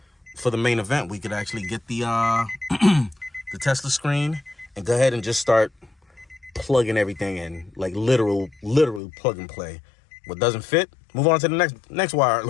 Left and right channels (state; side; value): drops out; right; at 9.0 s